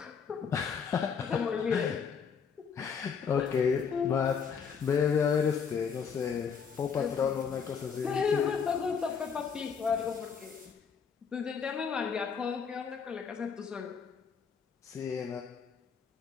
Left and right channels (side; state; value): right; quieter; 6.4 dB